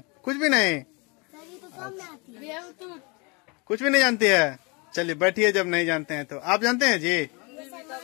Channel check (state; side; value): quieter; right; 29.8 dB